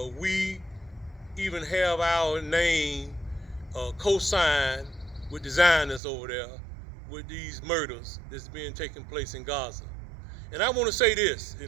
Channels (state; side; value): drops out; left; at 6.0 s